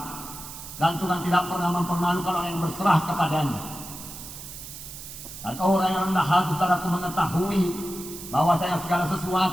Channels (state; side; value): noise; right; hiss, 12 dB below the sound